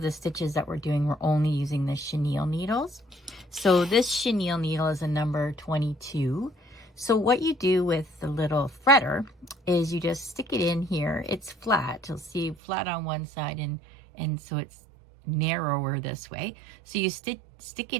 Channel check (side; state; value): left; drops out; at 12.6 s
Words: the stitches that we're doing, we're only using the chenille needles. So this chenille needle is a number 22. So what you do with the little threader is you just stick it in here. It's flat. You'll see flat on one side, and so it's narrower this way. So you stick